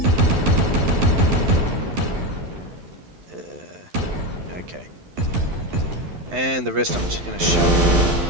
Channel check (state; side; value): late; left; 12 ms